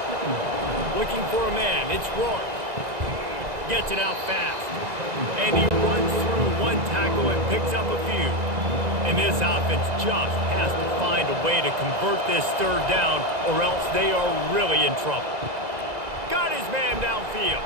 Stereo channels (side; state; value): left; late; 2.0 ms